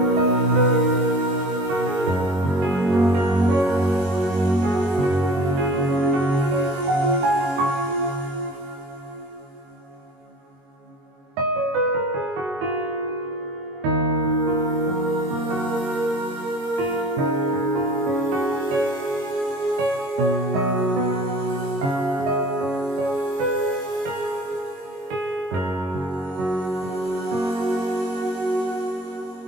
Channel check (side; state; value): left; late; 22 ms